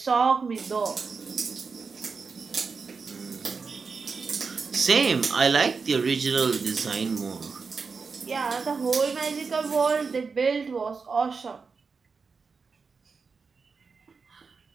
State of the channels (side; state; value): left; quieter; 4.9 dB